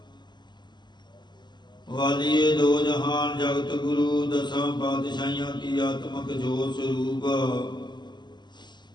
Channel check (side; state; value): right; late; 0.21 ms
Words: ਵਾਲੀਏ ਦੋ ਜਹਾਨ, ਜਗਤ ਗੁਰੂ ਦਸਾਂ ਪਾਤਸ਼ਾਹੀਆਂ ਕੀ ਆਤਮਕ ਜੋਤ ਸਰੂਪ।